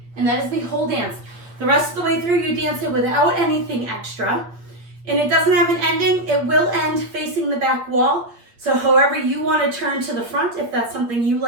And that is the whole dance. The rest of the way through, you dance it without anything extra. And it doesn't have an ending. It will end facing the back wall. So however you want to turn to the front, if that's something you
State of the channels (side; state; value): left; late; 8.4 ms